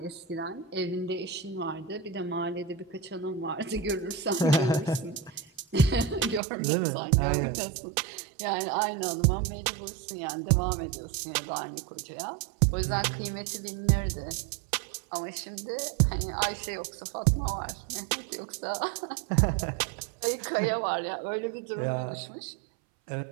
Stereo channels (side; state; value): left; drops out; at 6.4 s